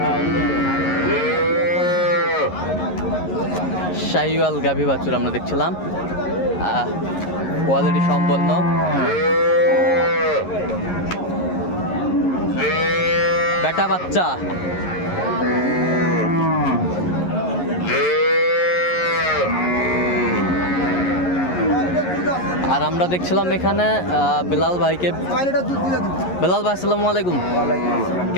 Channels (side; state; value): right; late; 11 ms